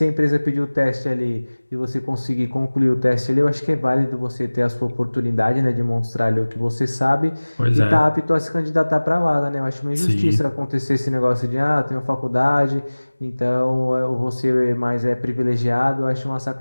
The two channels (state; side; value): inverted; both; correlation -1.00